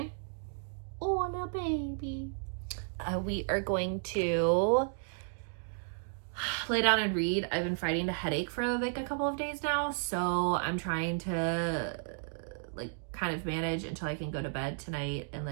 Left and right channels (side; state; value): left; silent; digital silence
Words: oh, no baby. We are going to lay down and read. I've been fighting a headache for like a couple of days now, so I'm trying to like kind of manage until I can go to bed tonight and